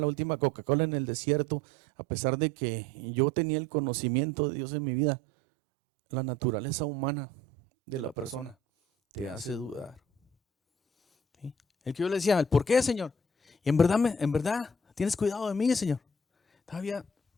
última Coca-Cola en el desierto, a pesar de que yo tenía el conocimiento de Dios en mi vida, la naturaleza humana de la persona te hace dudar. ¿Sí? El que yo le decía, ¿por qué, Señor? Y en verdad, tienes cuidado de mí, Señor. Todavía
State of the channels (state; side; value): normal; both; correlation 0.52